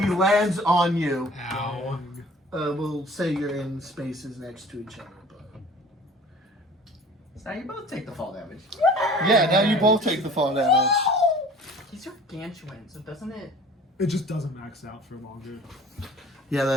lands on you. Ow. We'll say you're in spaces next to each other. But... So now you both take the fall damage. Yeah, now you both take the fall damage. He's gargantuan, so doesn't it? It just doesn't max out for longer. Yeah,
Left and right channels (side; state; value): both; normal; correlation 0.46